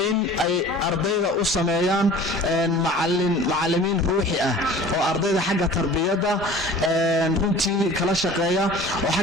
in ay ardayda u sameeyaan macallimiin ruuxi ah oo ardayda xagga tarbiyadda runtii kala shaqeeya oo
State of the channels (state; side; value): normal; both; correlation 0.43